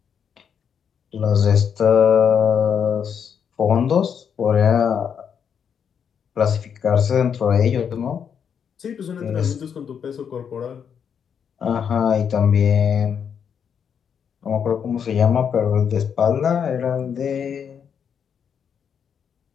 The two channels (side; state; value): right; quieter; 7.5 dB